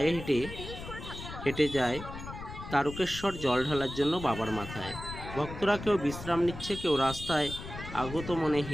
হেঁটে যায় তারকেশ্বর জল ঢালার জন্য বাবার মাথায়। ভক্তরা কেউ বিশ্রাম নিচ্ছে, কেউ রাস্তায় আগত মনে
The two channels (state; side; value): noise; left; rumble, 10 dB below the sound